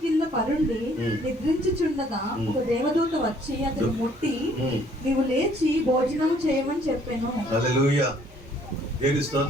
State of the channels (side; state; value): both; normal; correlation 0.61